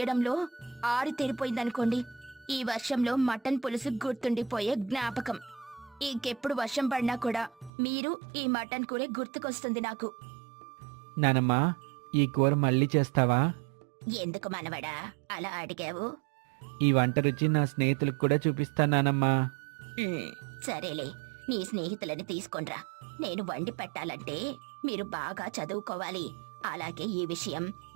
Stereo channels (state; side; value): drops out; left; at 7.7 s